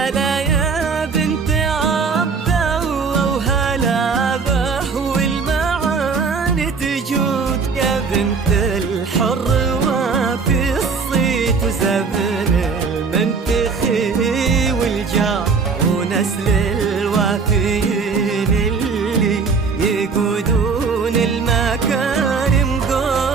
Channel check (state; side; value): quieter; left; 5.0 dB